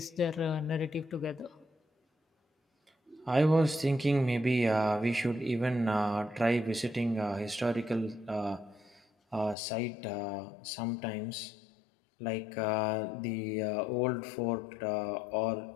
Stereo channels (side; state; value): right; drops out; at 9.6 s